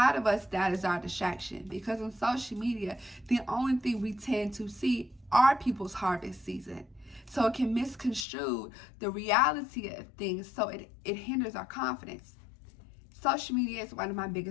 of us, that is our distraction because on social media, the only thing we tend to see are people's harvest season. So it can misconstrue the reality of things, so it hinders our confidence. Social media is one of my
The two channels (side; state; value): right; drops out; at 8.2 s